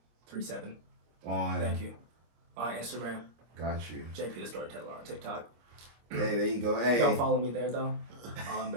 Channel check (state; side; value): late; left; 25 ms